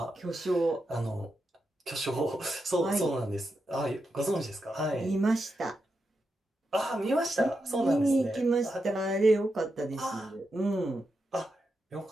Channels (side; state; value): both; normal; correlation 0.86